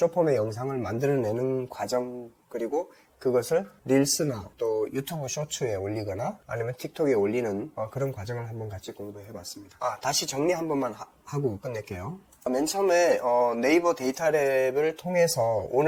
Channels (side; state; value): both; identical; correlation 1.00